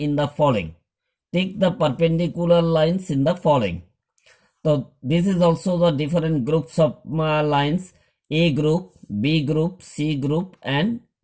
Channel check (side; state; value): both; identical; correlation 1.00